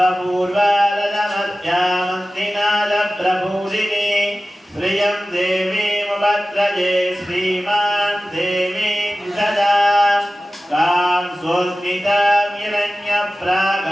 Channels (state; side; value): normal; both; correlation 0.96